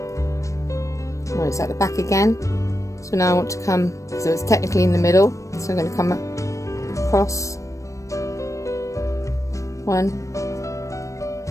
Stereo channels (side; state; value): right; late; 0.15 ms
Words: Oh, it's at the back again. So now I want to come, so it's technically in the middle, so I'm going to come across 1,